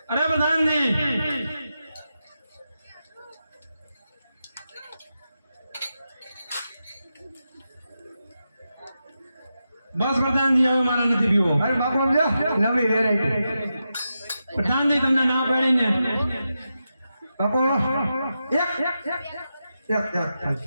અરે પ્રધાનજી, બસ પ્રધાનજી, હવે મારા નથી પીવો. અરે બાપુ સમજો, નવી વેરાયટી. પ્રધાનજી, તમને ના પાડી ને. બાપુ એક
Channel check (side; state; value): both; inverted; correlation -0.89